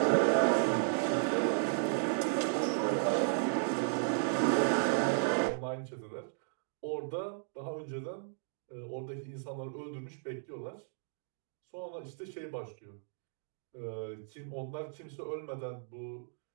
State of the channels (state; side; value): silent; left; digital silence